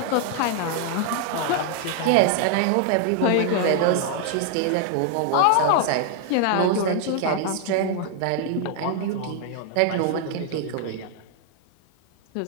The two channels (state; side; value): different; both; correlation 0.00